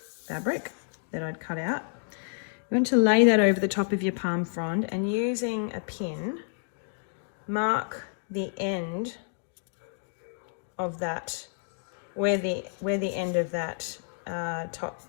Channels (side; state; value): right; silent; digital silence